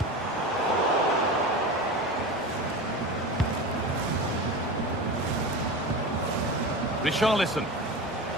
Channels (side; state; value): both; normal; correlation 0.27